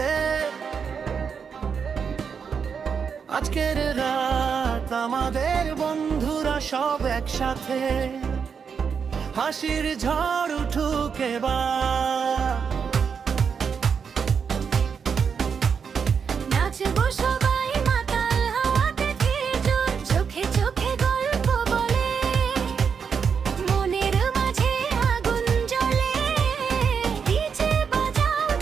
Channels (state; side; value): quieter; left; 6.4 dB